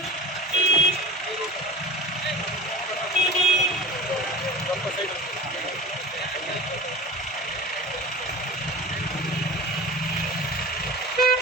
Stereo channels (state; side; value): normal; both; correlation 0.35